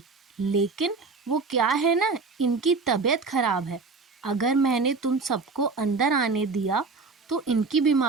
लेकिन वो क्या है ना, इनकी तबीयत खराब है। अगर मैंने तुम सबको अंदर आने दिया तो इनकी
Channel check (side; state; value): left; quieter; 4.2 dB